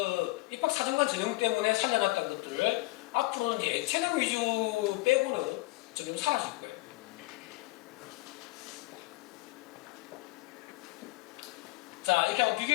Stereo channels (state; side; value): quieter; right; 21.2 dB